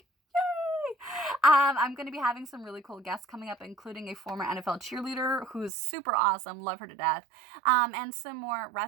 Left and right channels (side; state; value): left; drops out; at 5.7 s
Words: I'm going to be having some really cool guests coming up, including a former NFL cheerleader who's super awesome, love her to death, and some more